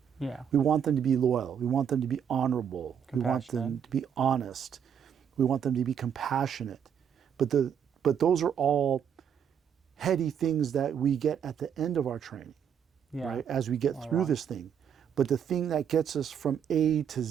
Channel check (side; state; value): left; quieter; 8.2 dB